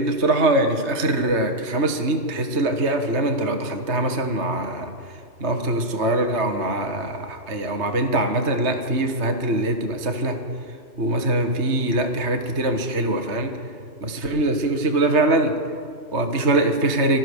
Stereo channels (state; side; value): late; left; 3.2 ms